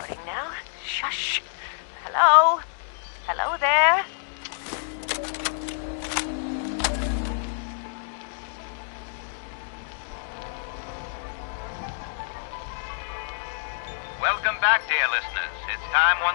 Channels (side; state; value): right; silent; digital silence